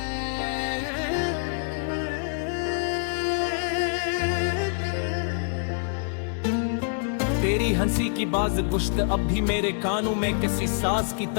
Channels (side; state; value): right; silent; digital silence